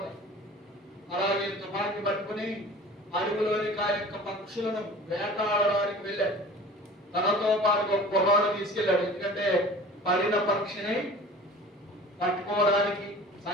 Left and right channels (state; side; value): normal; both; correlation 0.43